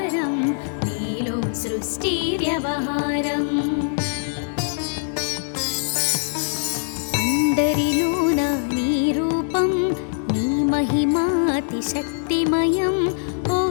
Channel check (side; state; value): right; silent; digital silence